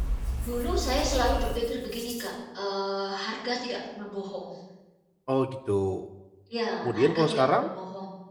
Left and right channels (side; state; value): both; identical; correlation 1.00